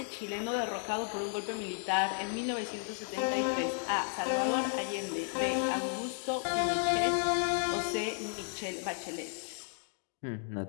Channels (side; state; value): right; silent; 55 dB below the other